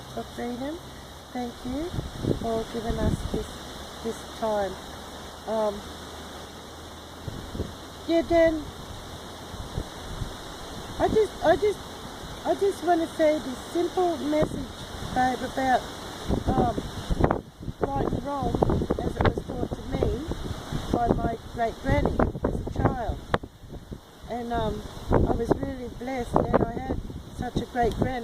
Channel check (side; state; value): both; identical; correlation 1.00